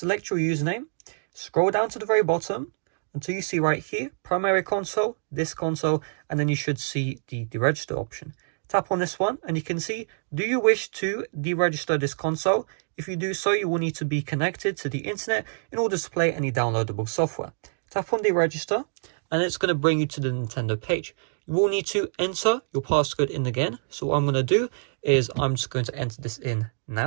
your username, scroll down to the very bottom until you see right here, primary console, this console, and then you should see the deregister option. Tap on this one and you can see, do you wish to deregister this console? If you do so, you will need to be connected to the internet in order to play any downloadable software. Tap on deregister and it's going to bring you to the Nintendo page. You will need to enter your passcode in again. So what I'm going to do is I'm just going to enter this in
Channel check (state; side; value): silent; left; digital silence